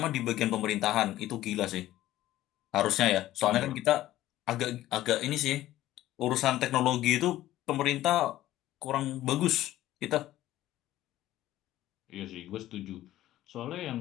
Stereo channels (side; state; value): right; quieter; 14.7 dB